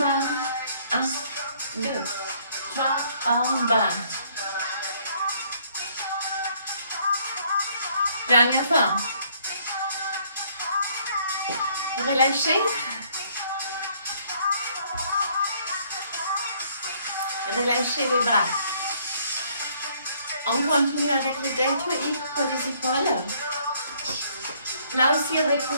1, 2, 3, en bas. Dernière fois. Relâchez. Relâchez les bras. On continue avec le deltoïde pour les épaules. Là aussi,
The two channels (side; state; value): both; inverted; correlation -0.64